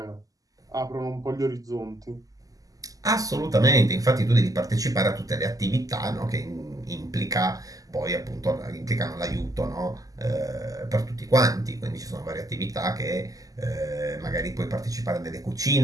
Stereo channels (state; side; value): late; left; 0.17 ms